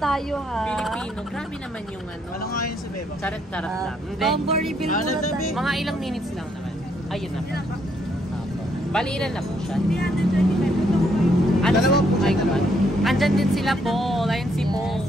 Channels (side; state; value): both; normal; correlation 0.72